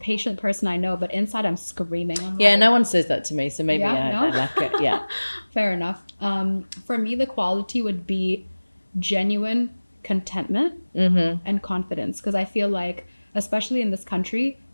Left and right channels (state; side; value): inverted; both; correlation -1.00